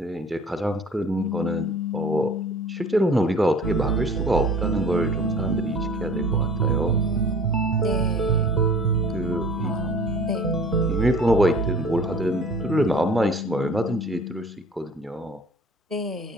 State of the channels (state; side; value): normal; both; correlation 0.47